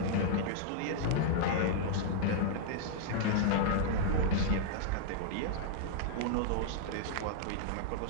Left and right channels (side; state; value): both; different; correlation -0.02